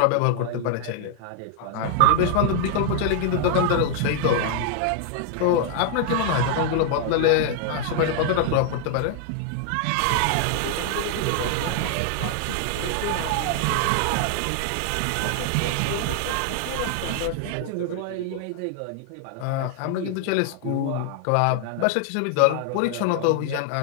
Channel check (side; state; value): both; different; correlation 0.00